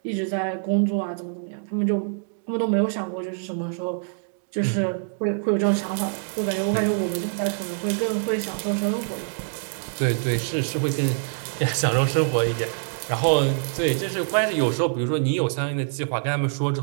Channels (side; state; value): left; silent; digital silence